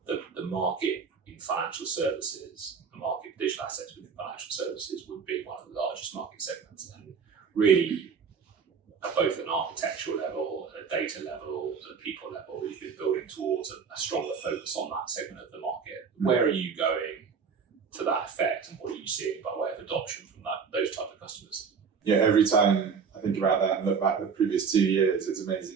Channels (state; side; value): quieter; left; 6.0 dB